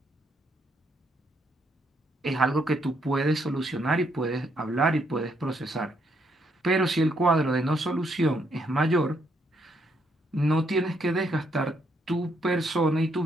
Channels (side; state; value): both; normal; correlation 0.73